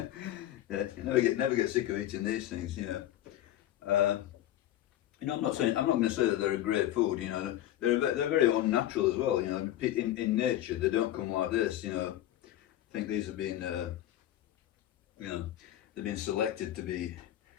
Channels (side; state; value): right; quieter; 13.2 dB